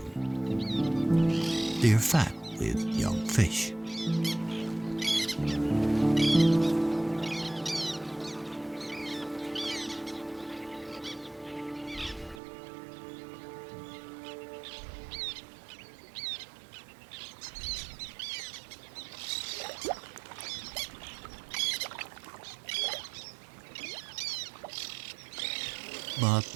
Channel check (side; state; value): left; drops out; at 12.4 s